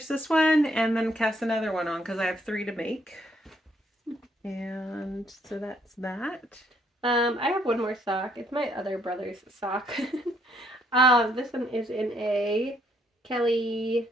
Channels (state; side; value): normal; both; correlation 0.70